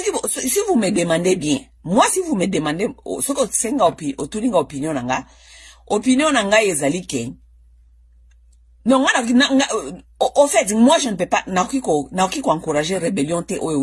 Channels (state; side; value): identical; both; correlation 1.00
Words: vous me demandez bien, moi si vous me demandez ce que senga opinion nanga ezali ke. Non, au fait, moi je ne peux pas naoki ko encourager rébellion te